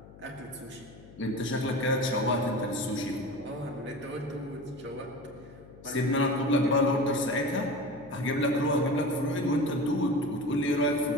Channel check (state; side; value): noise; left; hum, 20 dB below the sound